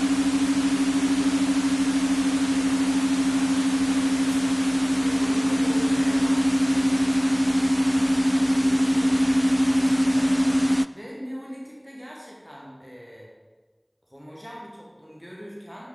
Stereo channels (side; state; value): both; identical; correlation 1.00